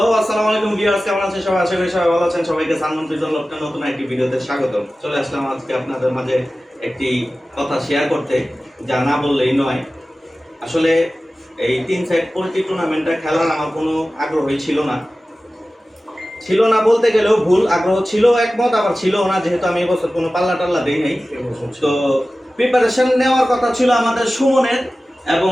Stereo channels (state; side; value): normal; both; correlation 0.96